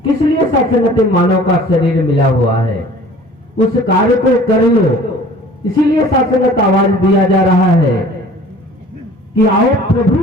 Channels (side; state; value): both; normal; correlation 0.48